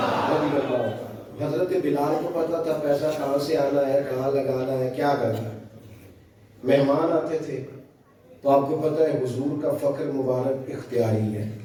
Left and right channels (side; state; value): both; identical; correlation 1.00